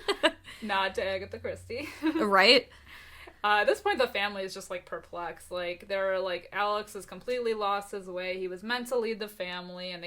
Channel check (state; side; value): identical; both; correlation 1.00